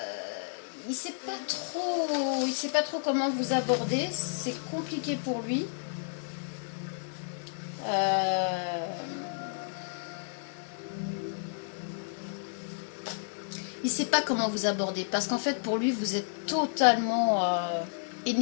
il sait pas trop comment vous aborder, c'est compliqué pour lui. Il sait pas comment vous aborder parce qu'en fait pour lui vous êtes totalement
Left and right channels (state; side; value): silent; right; digital silence